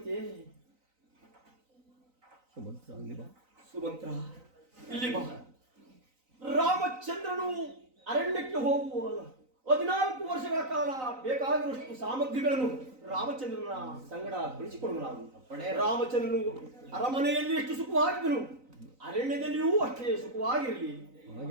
ಸುಮಂತ್ರ, ಇಲ್ಲಿ ಬಾ. ರಾಮಚಂದ್ರನು ಅರಣ್ಯಕ್ಕೆ ಹೋಗುವ 14 ವರ್ಷಗಳ ಕಾಲ ಬೇಕಾಗಿರುವಷ್ಟು ಸಾಮಗ್ರಿಗಳನ್ನು ರಾಮಚಂದ್ರನ ಸಂಗಡ ಕಳಿಸಿಕೊಡುವನಾಗುತ್ತ. ರಾಮಚಂದ್ರನು ಅರಮನೆಯಲ್ಲಿ ಎಷ್ಟು ಸುಖವಾಗಿದ್ದನು, ಅರಣ್ಯದಲ್ಲಿಯೂ ಅಷ್ಟೇ ಸುಖವಾಗಿರಲಿ.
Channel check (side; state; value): left; late; 3.9 ms